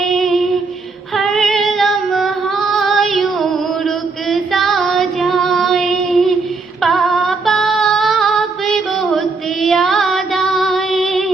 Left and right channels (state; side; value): quieter; left; 4.1 dB